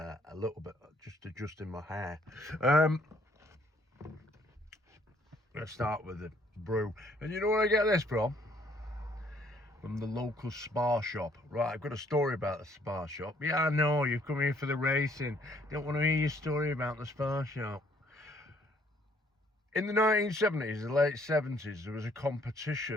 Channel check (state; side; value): normal; both; correlation 0.64